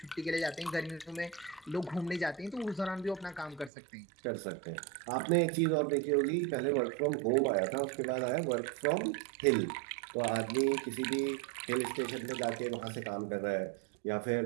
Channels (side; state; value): left; drops out; at 3.7 s